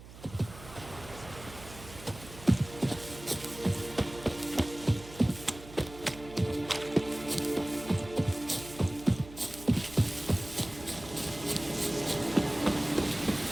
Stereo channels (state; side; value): noise; right; hum, 16 dB below the sound